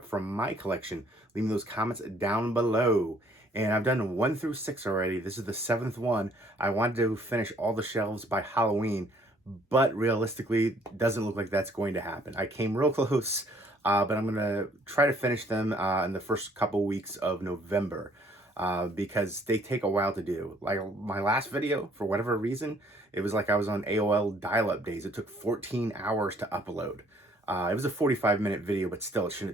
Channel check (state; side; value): normal; both; correlation 0.62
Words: from my collection. Leave me those comments down below. And I've done 1 through 6 already. This is the 7th one. I wanted to finish all the shelves by Halloween, but realistically, doesn't look like that's going to happen. I came real close, but I'm going to try to finish them in the first couple weeks of November because they take a while to do. Like my last video, for whatever reason, it was like I was on AOL dial-up days. It took 14 hours to upload. It was a 45-minute video, but still, it